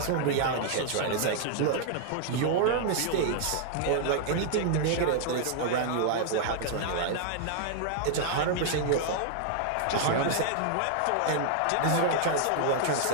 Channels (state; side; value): different; both; correlation -0.01